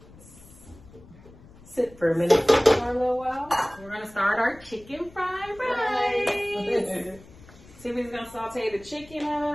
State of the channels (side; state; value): left; noise; rumble, 22 dB below the sound